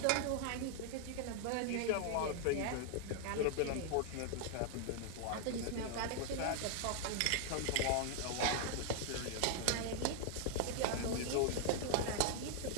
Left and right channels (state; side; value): different; both; correlation 0.00